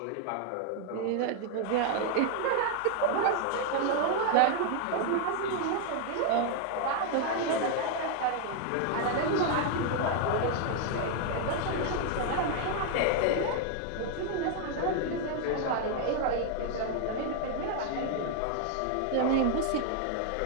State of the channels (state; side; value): different; both; correlation 0.00